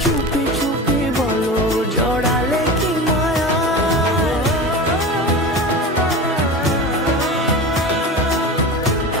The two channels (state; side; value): normal; both; correlation 0.29